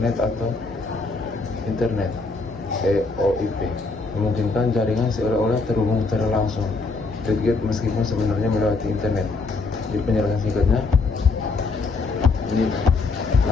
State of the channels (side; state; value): right; quieter; 3.9 dB